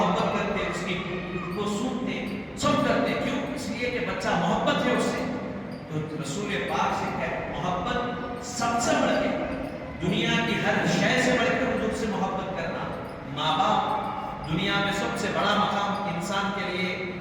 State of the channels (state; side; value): identical; both; correlation 1.00